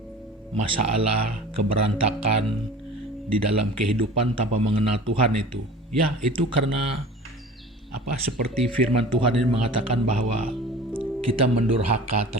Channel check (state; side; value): normal; both; correlation 0.41